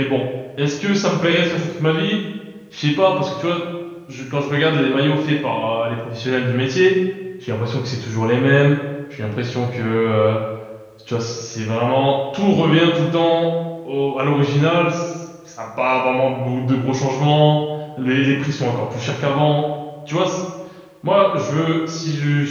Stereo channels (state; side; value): identical; both; correlation 1.00